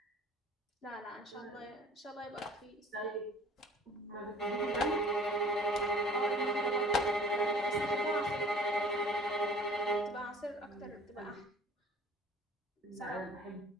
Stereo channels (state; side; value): normal; both; correlation 0.50